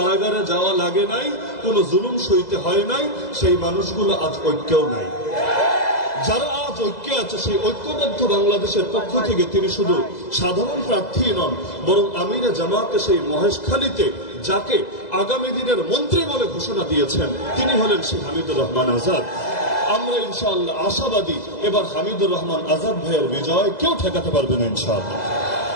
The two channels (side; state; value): right; late; 2.0 ms